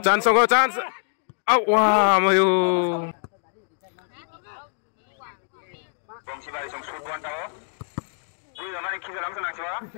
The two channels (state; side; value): silent; right; digital silence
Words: go chance. Wah, mayu.